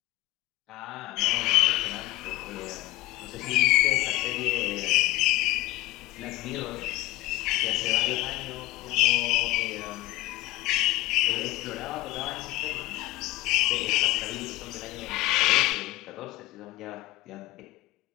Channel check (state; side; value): quieter; right; 18.5 dB